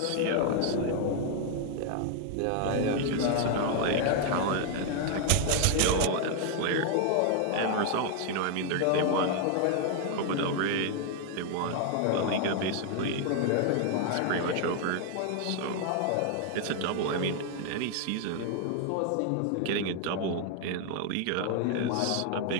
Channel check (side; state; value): both; different; correlation 0.00